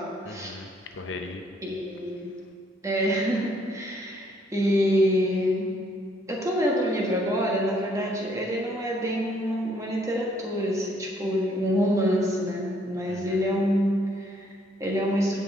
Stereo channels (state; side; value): normal; both; correlation 0.67